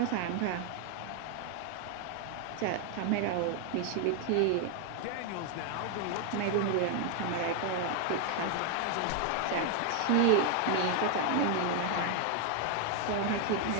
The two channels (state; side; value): different; both; correlation 0.00